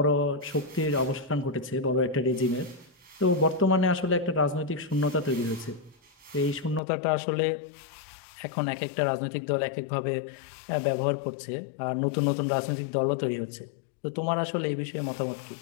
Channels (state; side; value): drops out; right; at 6.8 s